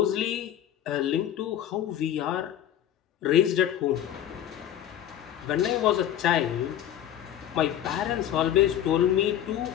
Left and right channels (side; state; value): right; quieter; 11.0 dB